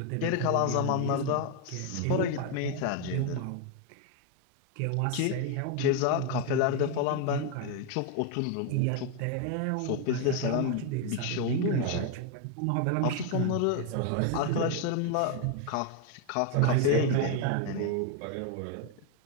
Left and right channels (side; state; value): both; different; correlation 0.01